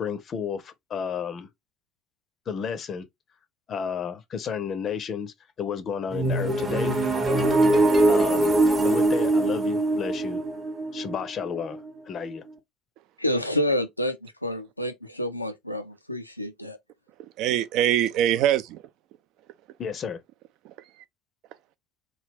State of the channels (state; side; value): normal; both; correlation 0.55